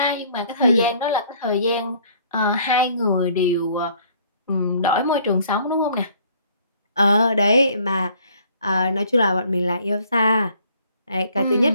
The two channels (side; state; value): both; inverted; correlation -0.59